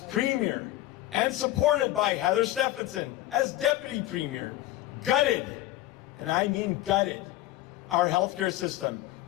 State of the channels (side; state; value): right; quieter; 15.3 dB